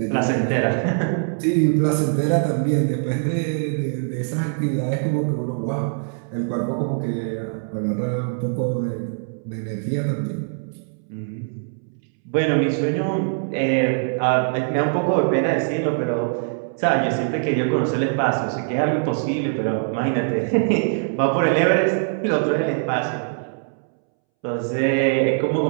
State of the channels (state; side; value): silent; left; 64 dB below the other